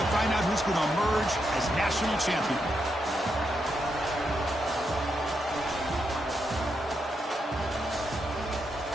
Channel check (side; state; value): both; normal; correlation 0.82